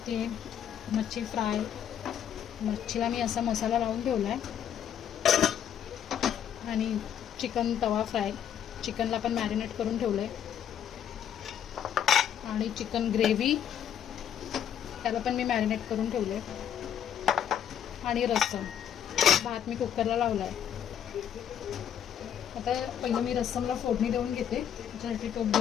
मच्छी फ्राय. मच्छीला मी असा मसाला लावून ठेवला आहे आणि चिकन तवा फ्राय. चिकनला पण मॅरिनेट करून ठेवलं आहे आणि चिकन ग्रेव्ही त्याला पण मी मॅरिनेट करून ठेवलं आहे आणि रस्सम. भात मी कुकरला लावला आहे. आता पहिलं मी रस्समला फोडणी देऊन घेते. त्याच्यासाठी टोप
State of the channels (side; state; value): right; quieter; 9.3 dB